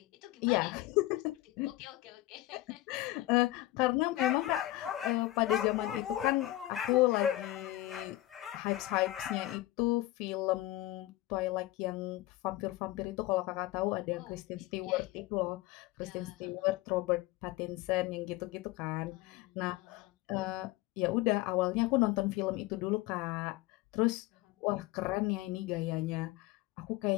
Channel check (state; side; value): quieter; right; 16.9 dB